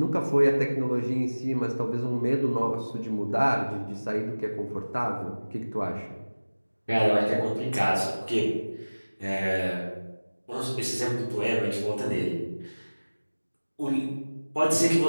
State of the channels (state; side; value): inverted; both; correlation -1.00